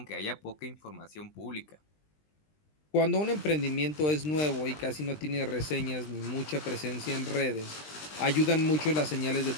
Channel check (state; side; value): late; right; 20 ms